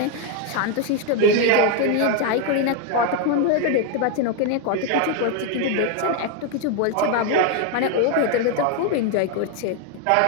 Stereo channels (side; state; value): both; different; correlation 0.01